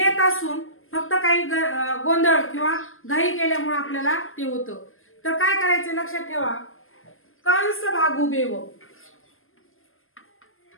असून फक्त काही गोंधळ किंवा घाई केल्यामुळे आपल्याला ते होतं। तर काय करायचं लक्षात ठेवा, कंस भागू बेव।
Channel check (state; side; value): late; right; 0.60 ms